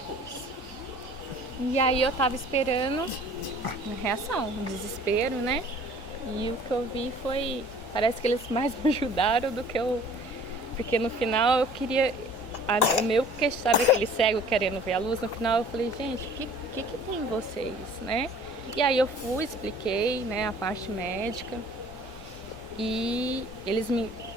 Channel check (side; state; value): both; normal; correlation 0.50